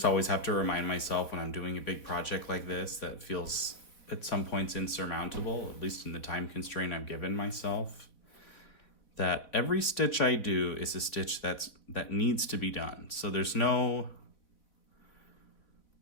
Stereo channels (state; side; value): late; right; 3.2 ms